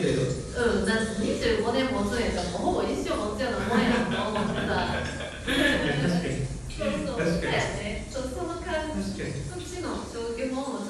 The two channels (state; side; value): identical; both; correlation 1.00